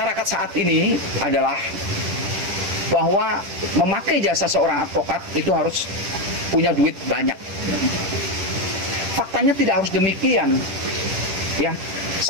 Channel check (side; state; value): left; late; 10 ms